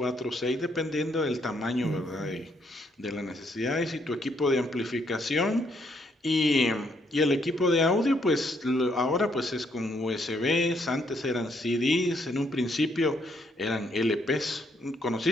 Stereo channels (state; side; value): normal; both; correlation 0.72